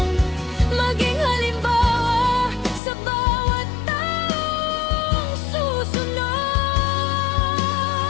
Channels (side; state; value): right; drops out; at 2.8 s